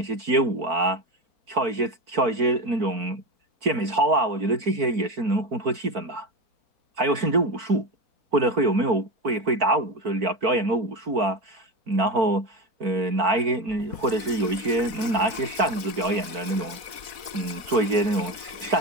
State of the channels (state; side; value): late; left; 4.1 ms